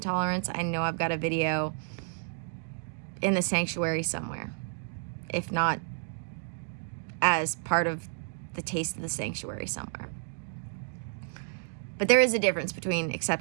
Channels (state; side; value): silent; left; 57 dB below the other